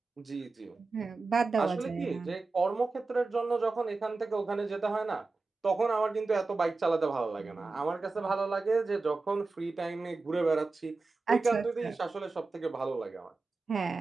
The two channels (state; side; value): quieter; left; 3.8 dB